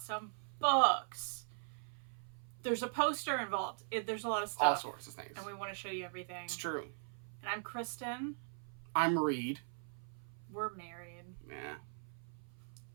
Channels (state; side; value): silent; left; 51 dB below the other